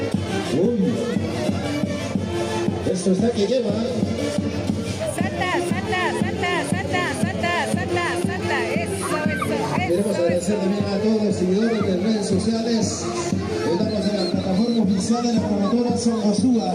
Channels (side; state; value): both; identical; correlation 1.00